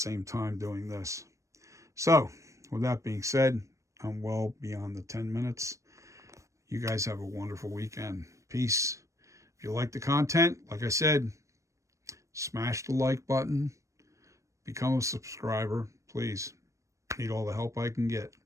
time doing this. So, with that being said, I'm well beyond the 10 minutes. You guys have a wonderful weekend. Peace. If you like the content, like I said, smash the like button. Become a subscriber, please. Need all the help I can get.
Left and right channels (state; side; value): late; left; 0.15 ms